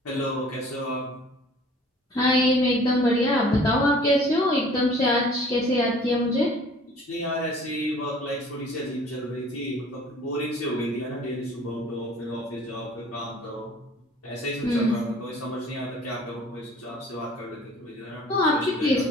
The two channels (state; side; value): normal; both; correlation 0.50